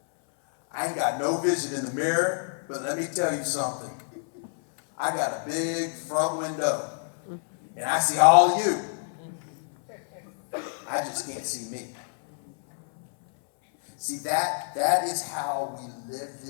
I ain't got no vision in the mirror, but let me tell you something. I got a big front window, and I see all of you. I just can't see me. See, that is how we live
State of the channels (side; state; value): right; silent; 60 dB below the other